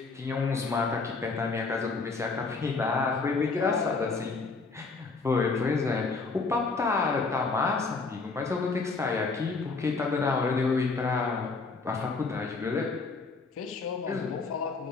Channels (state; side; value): quieter; right; 4.2 dB